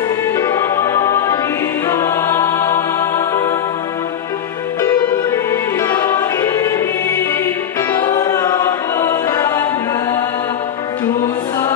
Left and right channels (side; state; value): right; quieter; 9.1 dB